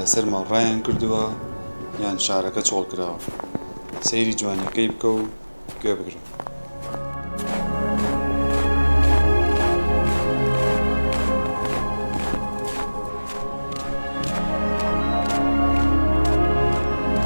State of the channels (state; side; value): inverted; both; correlation -1.00